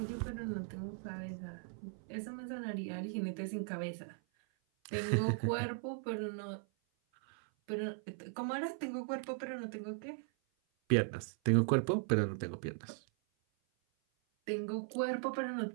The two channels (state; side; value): silent; left; 52 dB below the other